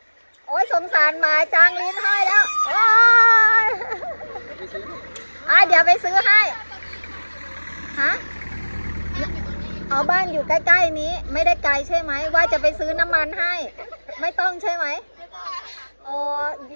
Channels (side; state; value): both; inverted; correlation -1.00